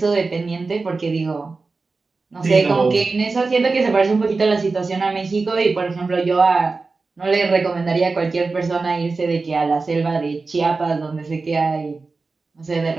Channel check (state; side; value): quieter; left; 4.0 dB